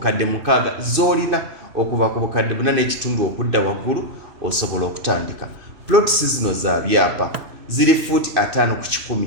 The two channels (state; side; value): late; left; 2.6 ms